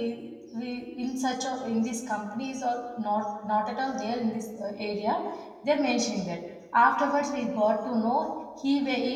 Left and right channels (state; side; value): identical; both; correlation 1.00